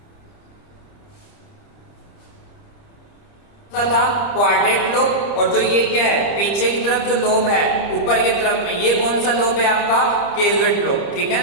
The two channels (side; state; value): right; late; 30 ms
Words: था क्वाड्रेट लोब, और जो ये क्या है, पीछे की तरफ जो लोब है ऊपर की तरफ में, ये कौन सा लोब है आपका, केजुएट लोब, ठीक है